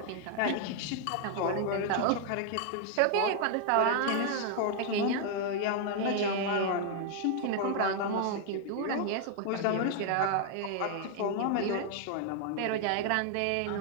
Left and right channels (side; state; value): both; different; correlation 0.00